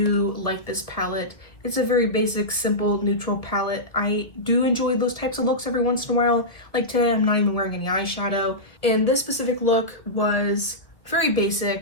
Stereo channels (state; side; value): late; right; 1.6 ms